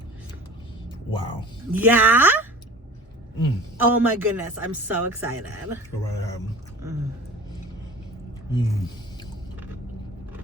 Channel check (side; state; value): both; normal; correlation 0.41